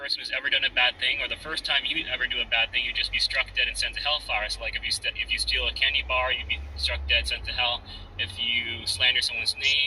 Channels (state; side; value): identical; both; correlation 1.00